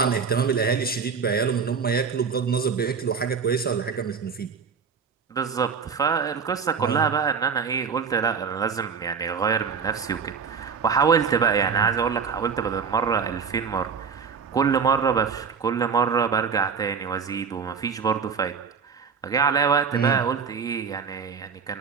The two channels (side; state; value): left; quieter; 6.0 dB